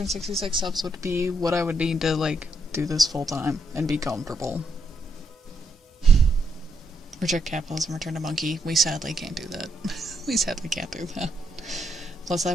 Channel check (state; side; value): normal; both; correlation 0.77